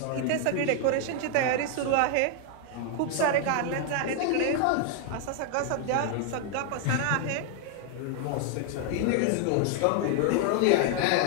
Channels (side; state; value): both; different; correlation 0.00